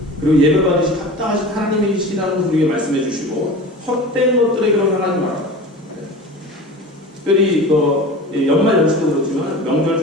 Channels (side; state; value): both; normal; correlation 0.34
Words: 그리고 예배받으실 합당하신 하나님이시라는 것을 우리에게 말씀해 주시고 헛된 것들에게로 향하지 마라. 특별히 연말 연시도 그렇지만 명절